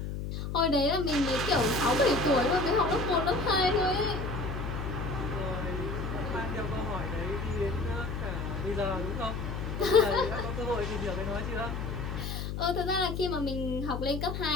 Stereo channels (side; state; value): left; noise; hum, 4 dB below the sound